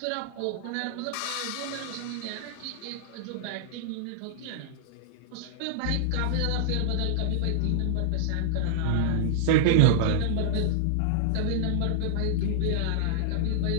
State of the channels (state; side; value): different; both; correlation -0.01